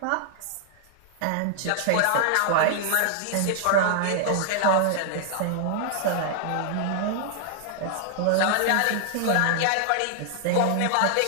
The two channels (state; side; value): different; both; correlation 0.00